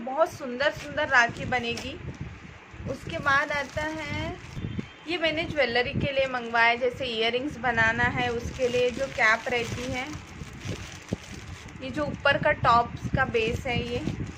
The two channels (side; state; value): both; identical; correlation 1.00